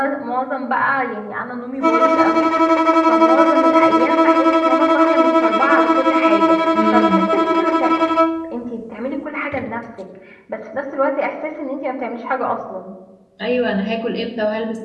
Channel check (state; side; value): identical; both; correlation 1.00